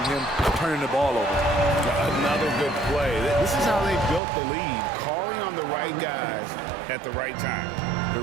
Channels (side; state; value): left; drops out; at 4.2 s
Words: him turning the ball over. Another good play. This is how they built the lead, calling on the right guys at the right time. The